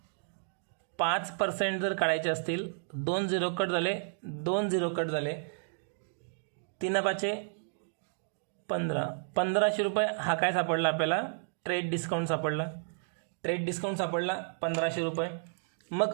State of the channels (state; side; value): silent; left; digital silence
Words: 5% जर काढायचे असतील, 2 झिरो कट झाले, 2 झिरो कट झाले, 3 5 15, 1500 रुपये हा काय सापडला आपल्याला, ट्रेड डिस्काउंट सापडला. ट्रेड डिस्काउंट सापडला 1500 रुपये.